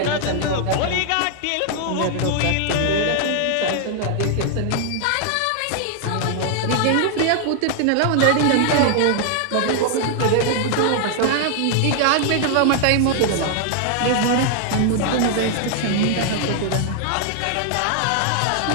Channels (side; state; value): both; different; correlation 0.00